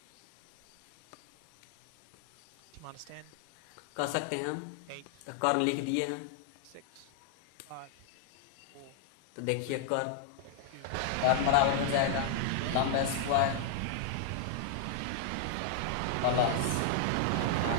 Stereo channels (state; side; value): different; both; correlation -0.01